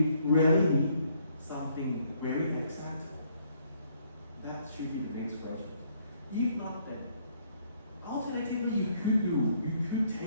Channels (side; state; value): both; inverted; correlation -0.68